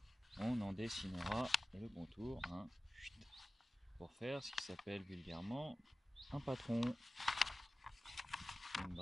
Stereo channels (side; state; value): both; normal; correlation 0.96